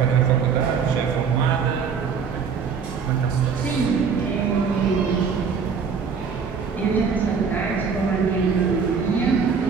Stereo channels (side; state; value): left; quieter; 6.0 dB